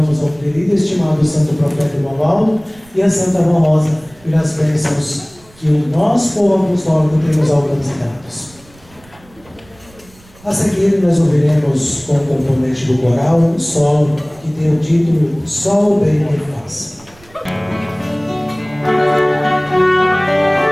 ao querido e estimado Santo Profeta Irmão Aldo e a Santa Avó Rosa pelas bênçãos que o nosso povo apostólico tem nos alcançados. A seguir, nós ouviremos com o componente do coral um solo que tem o título Só o Bem me faz.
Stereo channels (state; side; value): noise; right; rumble, 27 dB below the sound